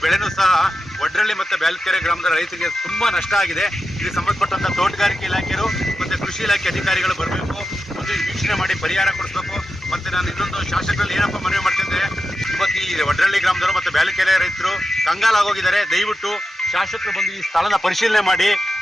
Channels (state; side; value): normal; both; correlation 0.90